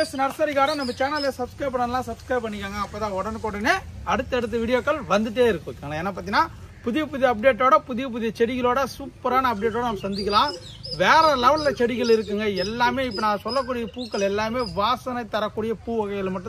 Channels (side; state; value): both; identical; correlation 1.00